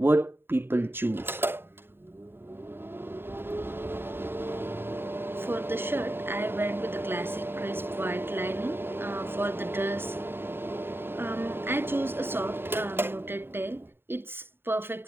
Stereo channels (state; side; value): late; left; 0.11 ms